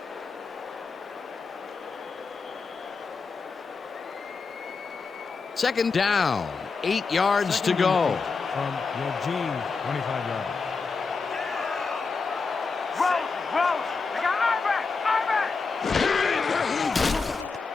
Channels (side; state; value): right; quieter; 4.7 dB